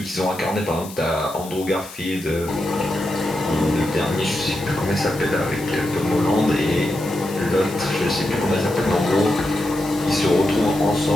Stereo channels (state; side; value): noise; left; hiss, 16 dB below the sound